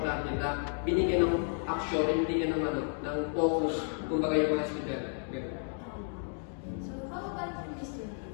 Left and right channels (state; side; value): silent; right; 56 dB below the other